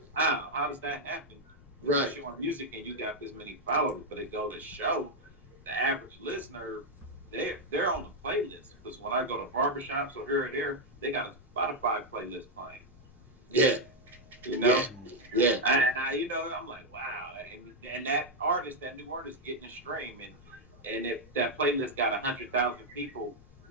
wow, how does that happen? Right. You're on music and you got this many followers, but it go to show the average listener, they're on the playlist. Because when I go to barbershops or here or there, they got a Spotify playlist playing. Yeah. You know? Yeah. And I, you know, I'm like, wow. And that artist, that new artist getting a stream. And if that playlist got 100,000 people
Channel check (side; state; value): both; normal; correlation 0.01